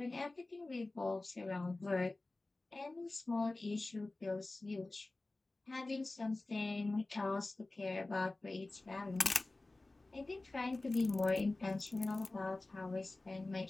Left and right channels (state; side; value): quieter; right; 3.0 dB